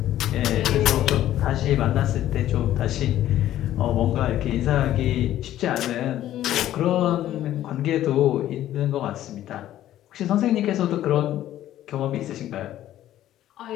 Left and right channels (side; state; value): right; quieter; 12.9 dB